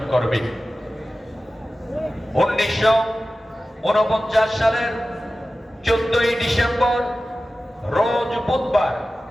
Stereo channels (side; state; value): both; normal; correlation 0.95